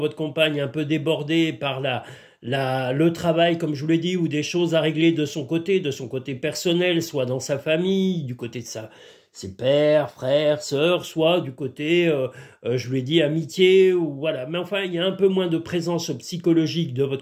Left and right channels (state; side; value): identical; both; correlation 1.00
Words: compagne un peu débordé par le travail, comme je vous l'ai dit, ou des choses à régler de son côté personnel, soit dans sa famille, du côté de ses pères, frères, sœurs, soit du côté, je vous l'ai dit, amitié, ou voilà. Mais enfin, il y a un peu moins de présence psychologique de